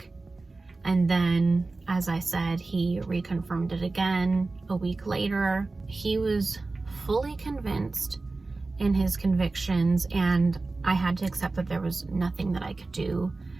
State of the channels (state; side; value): quieter; left; 3.5 dB